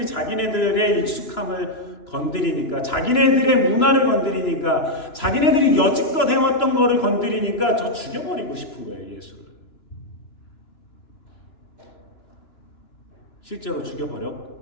자기네들의 익숙함을 건드리니까 자기네들의 문화를 건드리니까 자기네들이 여지껏 해왔던 거를 건드리니까 저 죽여버리고 싶은 거예요. 예수를. 실제로 죽여버렸고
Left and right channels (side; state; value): right; late; 2.9 ms